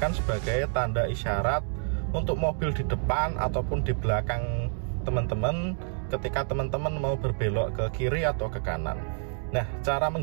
sebagai tanda isyarat untuk mobil di depan ataupun di belakang teman-teman ketika teman-teman mau berbelok ke kiri atau ke kanan. Nah, cara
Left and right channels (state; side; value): silent; left; digital silence